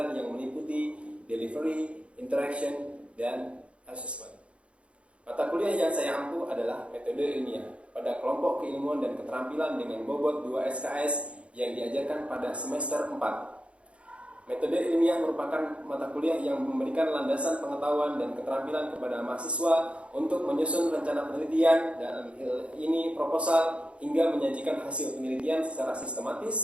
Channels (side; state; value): left; late; 0.060 ms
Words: yang meliputi delivery, interaction, dan assessment. Mata kuliah yang saya ampu adalah metode ilmiah pada kelompok keilmuan dan keterampilan dengan bobot 2 SKS yang diajarkan pada semester 4. Metode ilmiah merupakan mata kuliah yang memberikan landasan pengetahuan dan keterampilan kepada mahasiswa untuk menyusun rencana penelitian dan ini proposal hingga menyajikan hasil penelitian secara